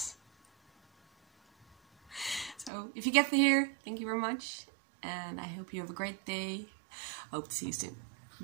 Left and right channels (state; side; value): drops out; left; at 2.7 s